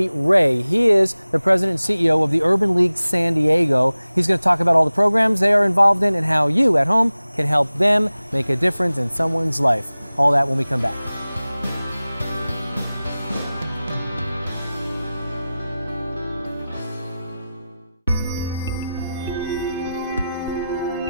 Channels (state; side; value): inverted; both; correlation -0.96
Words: Ray. He is the president and CEO of the Urban League San Diego. He's going to talk about all the programs they are involved in and how you at home can help them make a difference in someone's life. All that when we come back.